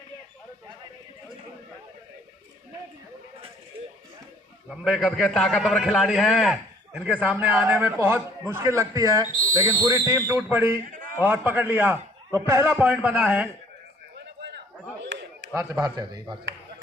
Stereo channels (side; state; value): both; normal; correlation 0.57